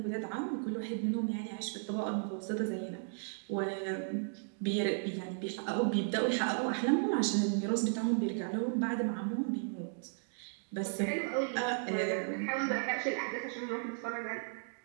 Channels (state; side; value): silent; left; digital silence